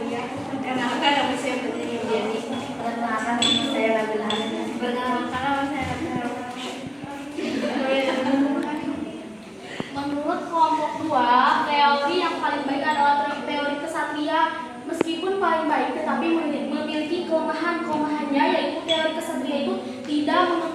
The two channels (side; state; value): both; identical; correlation 1.00